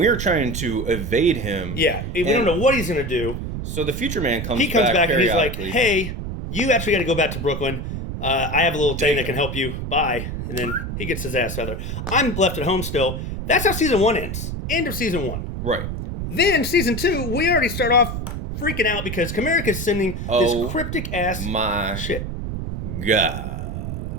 trying to evade him. Yeah, we don't know what he's going to do. So the Future Man comes back and he's like, hey, you actually got to go back to Brooklyn. I have a little thing that can help you. Bye. And then he gets his ass feather. I'm left at home still. That's how season 1 ends. End of season 1. Right. Then season 2, we already start off freaking out because Comerica's sending this cryptic ass shit. God.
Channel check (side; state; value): right; noise; rumble, 5 dB below the sound